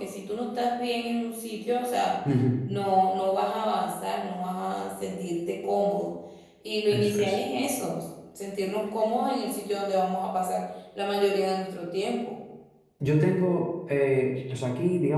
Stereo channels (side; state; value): both; identical; correlation 1.00